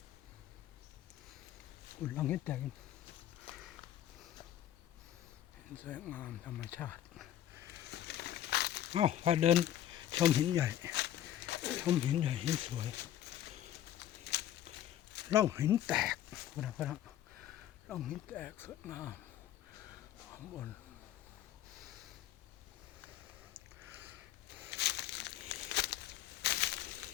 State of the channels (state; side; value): quieter; right; 11.9 dB